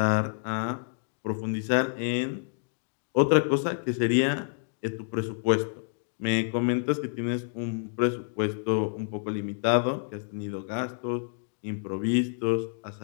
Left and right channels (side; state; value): right; silent; digital silence